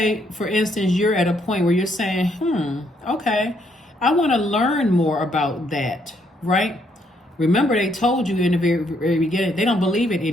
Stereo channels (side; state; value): both; normal; correlation 0.72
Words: for instance, you're at a point where you're saying, okay, I want to learn more about that, right? Remember, they told you in the very, very beginning, they don't believe in